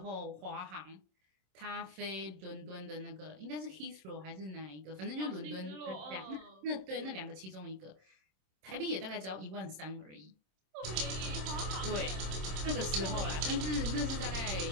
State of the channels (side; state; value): left; late; 27 ms